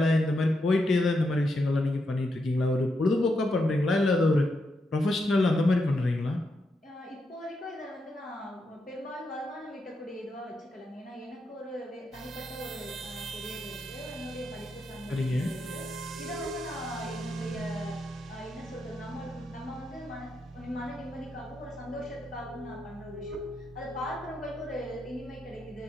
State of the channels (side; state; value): both; normal; correlation 0.83